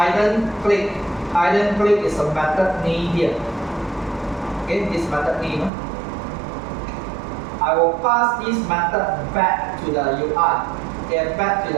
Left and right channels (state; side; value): drops out; left; at 5.7 s